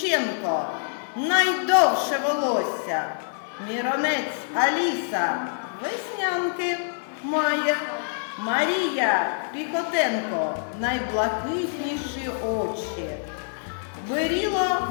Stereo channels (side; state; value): right; silent; 61 dB below the other